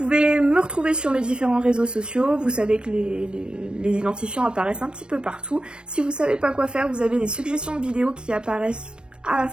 me retrouver sur mes différents réseaux sociaux, vous savez que les identifiants apparaissent un petit peu partout. Si vous savez pas quoi faire, vous avez des suggestions de vidéos qui apparaissent à la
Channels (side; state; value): left; late; 0.055 ms